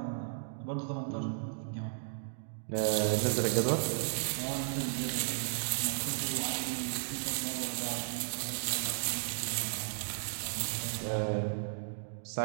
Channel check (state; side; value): silent; left; digital silence